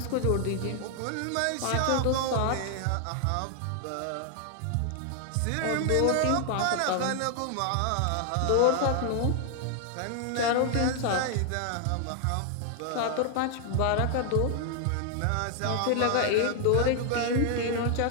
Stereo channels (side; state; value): both; different; correlation 0.00